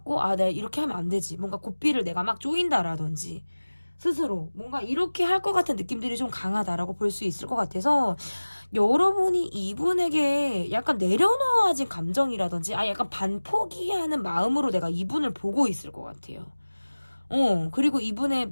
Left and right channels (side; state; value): both; inverted; correlation -1.00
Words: 내가 이렇게 하면 안 되지. 뭔가 고삐를 내가 막 조인다라든지 스스로 뭔가 이렇게 할 것 같은 느낌들이 좀 강하다라고 볼 수 있을 것 같아서 여러분이 이분에게 약간 내려놓아진 감정이라든지 약간 반포기하는 마음으로 내가 이분을 보고 있을 것 같아요. 그리고